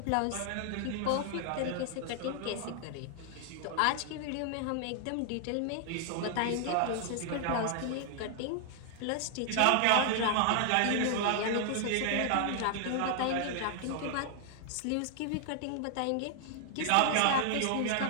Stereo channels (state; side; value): different; both; correlation 0.00